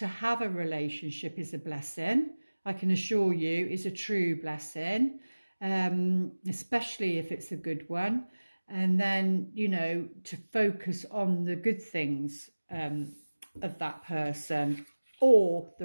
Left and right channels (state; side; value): inverted; both; correlation -1.00